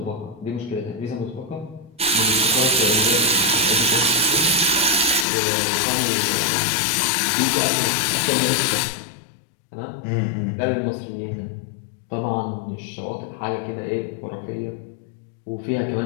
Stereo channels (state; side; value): drops out; right; at 5.2 s